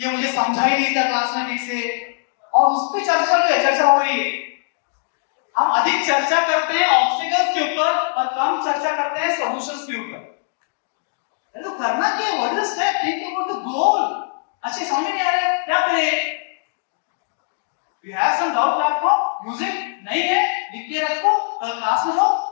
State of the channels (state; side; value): silent; right; digital silence